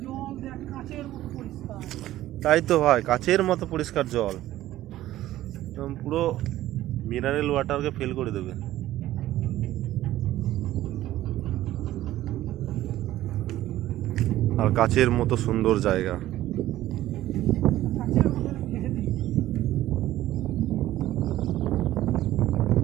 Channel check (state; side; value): quieter; left; 14.5 dB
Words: তাই তো ভাই, কাচের মতো পরিষ্কার জল, একদম পুরো মিনারেল ওয়াটারকে ফেল করে দেবে। আর কাচের মতো সুন্দর জায়গা।